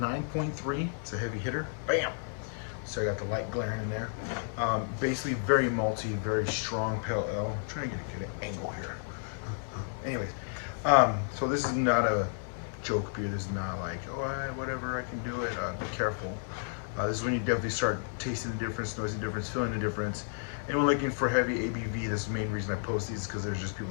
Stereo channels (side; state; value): right; silent; digital silence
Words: It's a heavy hitter. Bam. So I got the light glaring in there. Basically, very malty, very strong pale ale. I'm trying to get a good angle here. Anyways, so this is not a joke beer. This is not like, oh, whatever, I can do it. Be careful. This is when you definitely start tasting the difference, noticing the difference, feeling the difference. Anyone looking for heavy ABV, this is the main reason I post these, because there's just